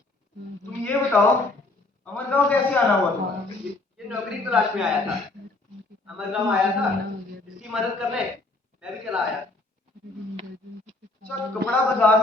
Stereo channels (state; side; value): quieter; right; 3.0 dB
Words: तुम ये बताओ, अमरगांव कैसे आना हुआ तुम्हारा? ये नौकरी तलाश में आया था, अमरगांव आया था, इसकी मदद करने मैं भी चला आया। अच्छा, कपड़ा